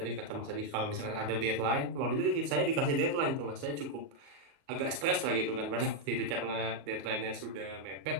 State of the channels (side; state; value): left; late; 38 ms